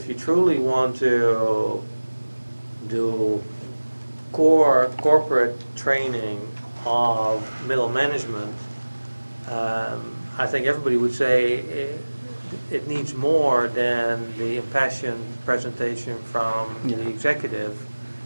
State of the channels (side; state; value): both; inverted; correlation -1.00